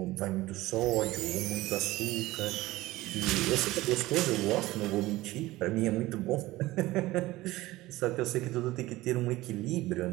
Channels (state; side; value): quieter; left; 18.1 dB